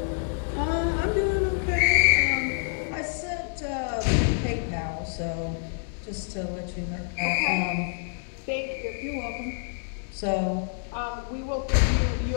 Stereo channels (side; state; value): right; silent; digital silence